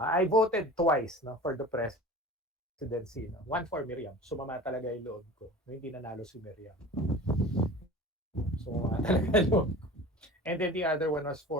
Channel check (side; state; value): both; normal; correlation 0.39